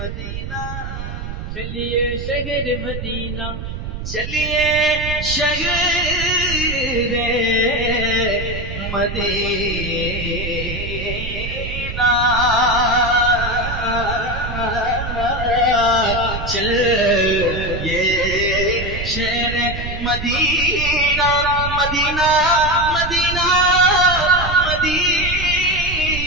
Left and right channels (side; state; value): right; noise; rumble, 7 dB below the sound